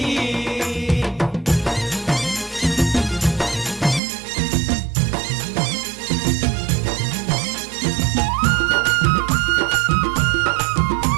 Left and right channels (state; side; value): drops out; left; at 4.0 s